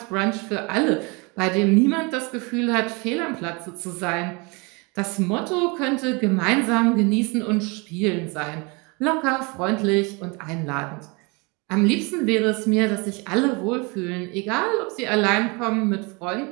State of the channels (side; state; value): left; quieter; 29.0 dB